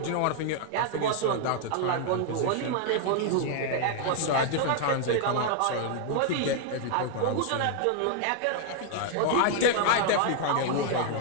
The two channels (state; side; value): different; both; correlation 0.00